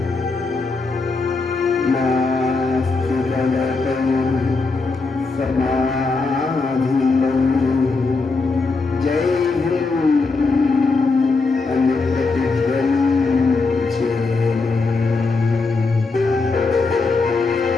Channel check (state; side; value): quieter; right; 4.0 dB